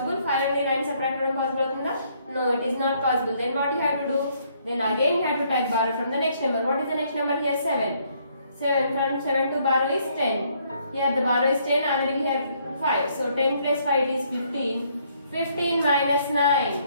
5 నుండి 9 subtract చేయడం possible అవుతుందా? No, it is not possible. Then what you have to do? Then again you have to take borrow from the next number. What is the next number here? 7. 7 from 7 to borrow is 10. Here the borrow is 10, already we have 5. So 10 plus 5 it is 15. 15 minus 9.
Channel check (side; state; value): both; inverted; correlation -0.68